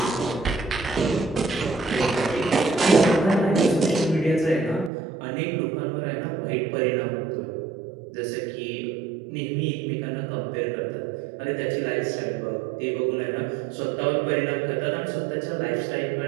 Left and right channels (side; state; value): left; drops out; at 4.9 s